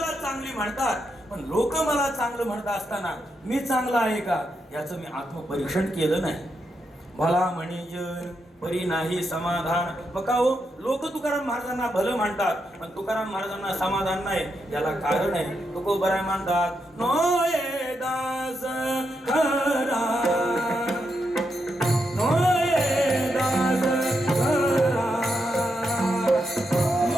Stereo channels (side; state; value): both; normal; correlation 0.83